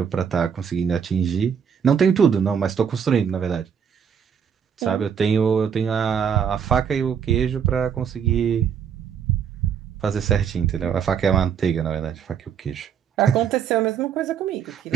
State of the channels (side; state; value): left; quieter; 7.6 dB